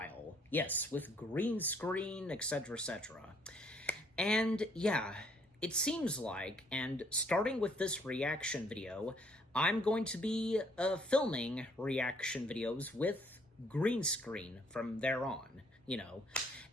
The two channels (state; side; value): normal; both; correlation 0.65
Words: Yes, with green screen, etc., etc. And yeah, it seems like, and starting with this reaction video, I'm going to be filming reaction videos with green screen from there on,